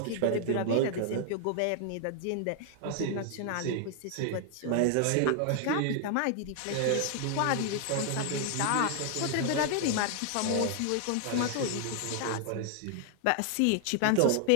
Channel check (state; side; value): different; both; correlation 0.00